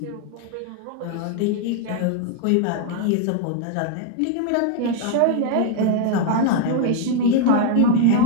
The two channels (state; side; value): different; both; correlation 0.00